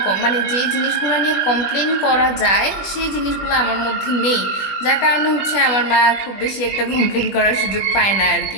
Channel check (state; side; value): late; right; 20 ms